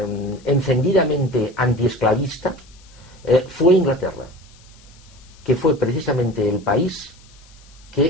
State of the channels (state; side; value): noise; left; hiss, 27 dB below the sound